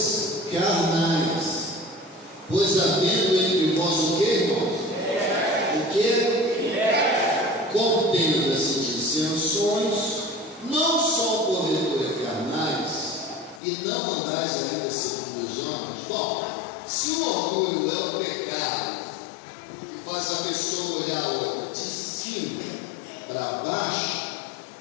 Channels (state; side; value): drops out; right; at 13.6 s